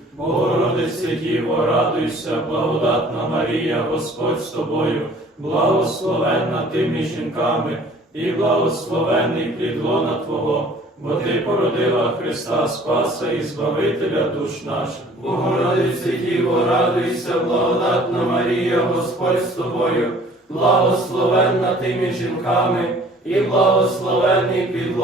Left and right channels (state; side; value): normal; both; correlation 0.52